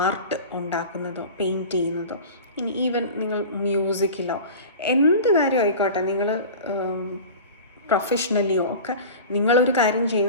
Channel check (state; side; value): inverted; both; correlation -0.35